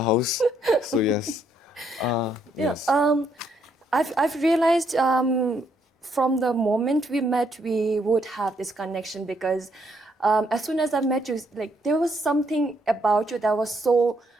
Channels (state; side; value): normal; both; correlation 0.73